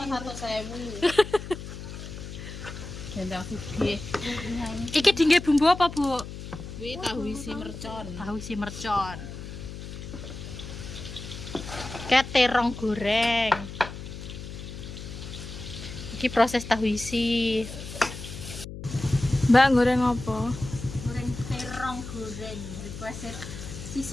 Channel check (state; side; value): noise; left; hum, 10 dB below the sound